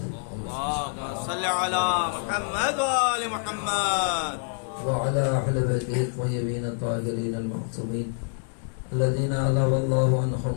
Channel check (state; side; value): silent; right; 61 dB below the other